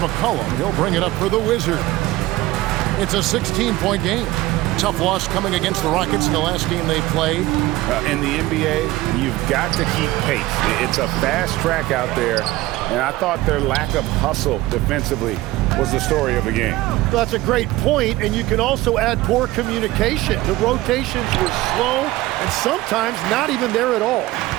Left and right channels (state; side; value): quieter; left; 17.8 dB